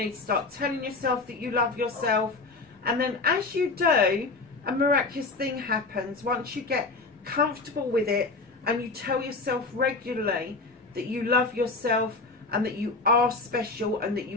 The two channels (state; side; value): quieter; right; 3.7 dB